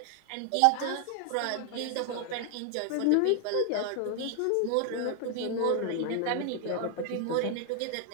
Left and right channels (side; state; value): both; different; correlation 0.00